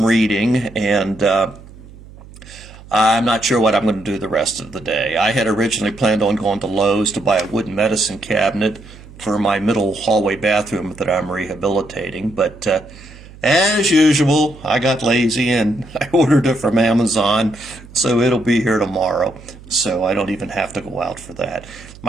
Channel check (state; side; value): noise; right; hum, 19 dB below the sound